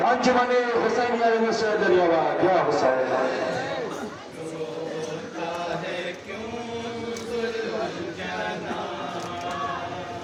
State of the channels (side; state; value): both; identical; correlation 1.00